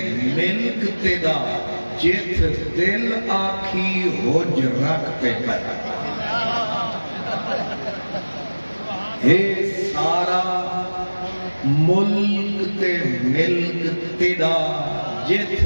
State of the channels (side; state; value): both; inverted; correlation -1.00